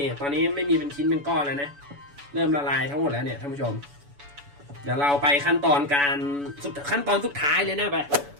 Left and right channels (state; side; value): late; left; 7.0 ms